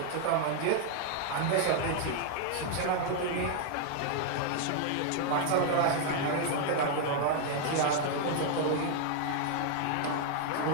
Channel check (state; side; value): different; both; correlation 0.00